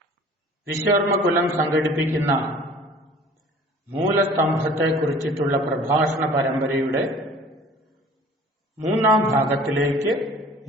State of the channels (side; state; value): both; normal; correlation 0.48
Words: വിശ്വകർമ്മകുലം സംഘടിപ്പിക്കുന്ന മൂലസ്തംഭത്തെക്കുറിച്ചിട്ടുള്ള പ്രഭാഷണ പരമ്പരയുടെ മൂന്നാം ഭാഗത്തിലേക്ക്